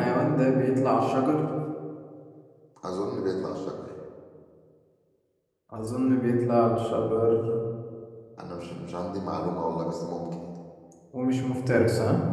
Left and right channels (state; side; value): identical; both; correlation 1.00